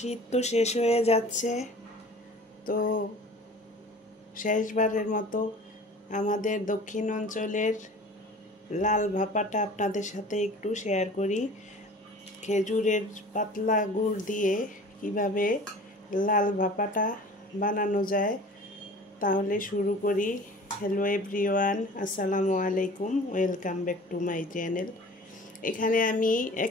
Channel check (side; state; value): both; normal; correlation 0.43